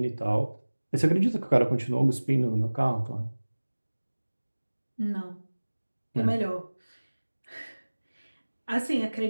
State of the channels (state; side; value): inverted; both; correlation -1.00